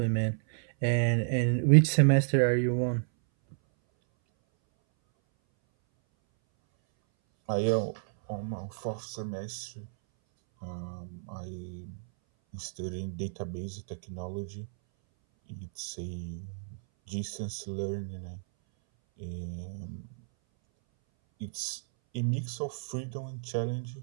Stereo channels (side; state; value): left; silent; 57 dB below the other